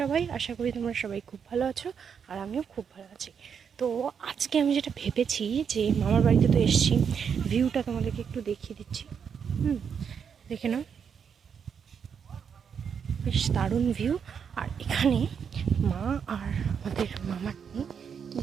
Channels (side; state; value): left; quieter; 7.0 dB